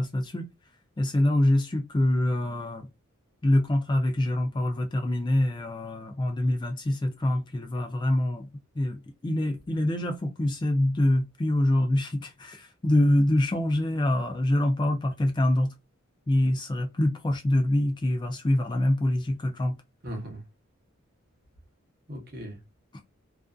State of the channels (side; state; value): both; normal; correlation 0.95